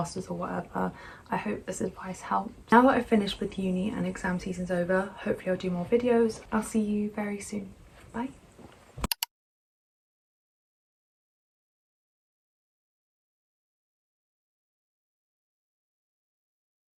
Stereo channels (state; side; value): identical; both; correlation 1.00